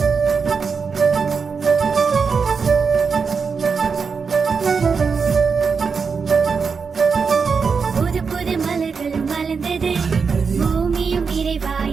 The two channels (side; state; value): left; quieter; 5.5 dB